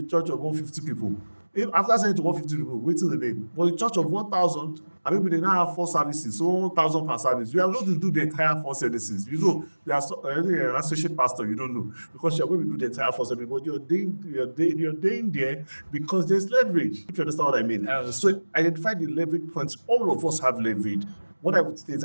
church of 150 people. If after selling to 150 people, waiting the name. But a church of 1,000, and maybe they now have 4 services, so 1,000 per service. You are going to do the entire 4 services. You know, you are an associate pastor, you don't know, because you are going to do the entire 4 services. But you're doing there because there's leverage. If you understand what I mean. So identify the leverage points. All of us have leverage. What I would say is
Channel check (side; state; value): both; inverted; correlation -1.00